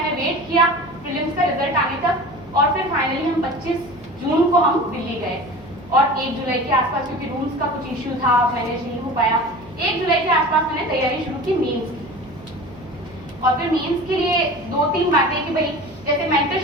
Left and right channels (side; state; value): right; noise; hum, 22 dB below the sound